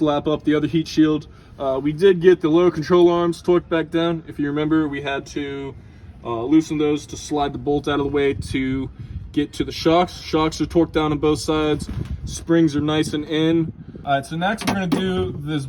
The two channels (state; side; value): identical; both; correlation 1.00